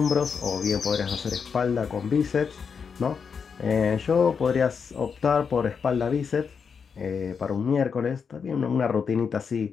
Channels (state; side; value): quieter; right; 6.1 dB